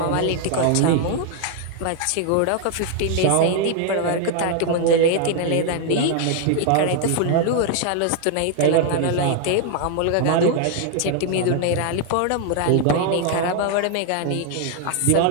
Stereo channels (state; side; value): different; both; correlation 0.00